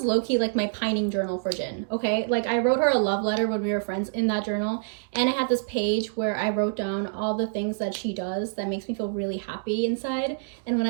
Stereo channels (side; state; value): left; silent; digital silence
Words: low-key like my pining journal for Jin, okay? Like I wrote her a love letter when we were friends in that journal. And I had this page where I wrote down all the things that she does that makes me feel really happy inside. And when